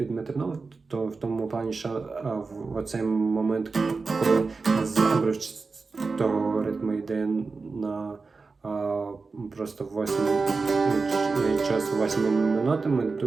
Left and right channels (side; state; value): left; quieter; 4.3 dB